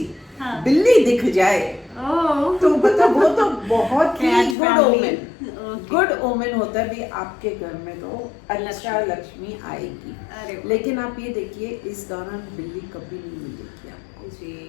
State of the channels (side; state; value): right; drops out; at 4.5 s